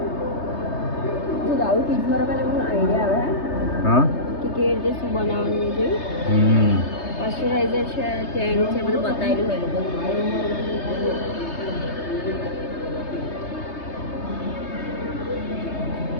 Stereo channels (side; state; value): right; late; 3.3 ms